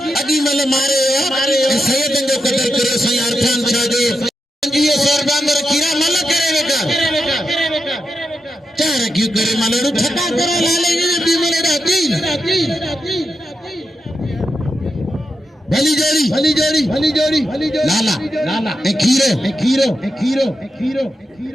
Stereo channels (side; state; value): both; normal; correlation 0.87